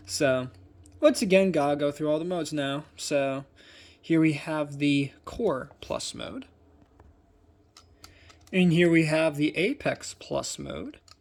So, once again, gotta go through all the modes now. So, here we have the Core Plus mode. And here we have the Apex Plus mode.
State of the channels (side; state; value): both; identical; correlation 1.00